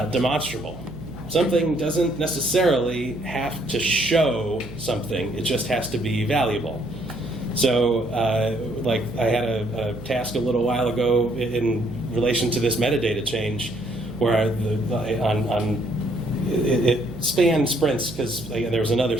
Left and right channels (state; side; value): noise; right; hum, 15 dB below the sound